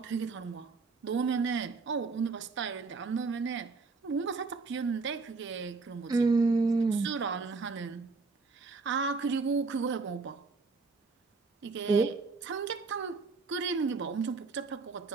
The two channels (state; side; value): quieter; left; 4.2 dB